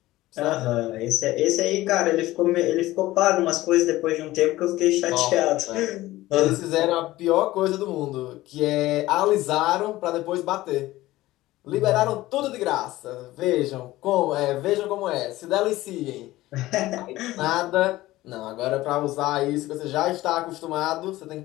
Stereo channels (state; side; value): quieter; right; 17.2 dB